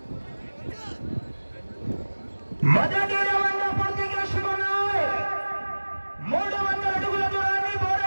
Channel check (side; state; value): both; inverted; correlation -1.00